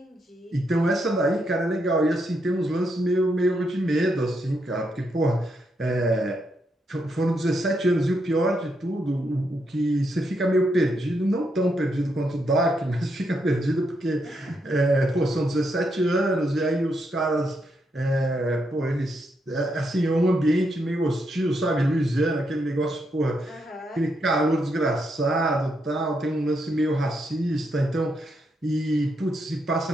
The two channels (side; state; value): both; normal; correlation 0.80